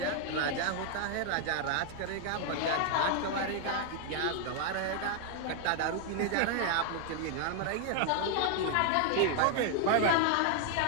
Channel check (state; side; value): different; both; correlation 0.00